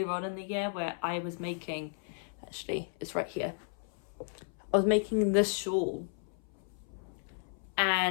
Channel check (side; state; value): right; silent; 55 dB below the other